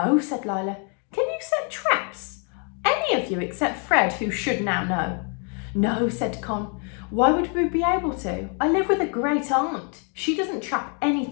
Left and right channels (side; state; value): right; quieter; 39.8 dB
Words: said Lila. "Can you set traps?" "Any of you except Fred, who should now know." "No," said Con. "Why would we be able to? I live with a great aunt. She doesn't trap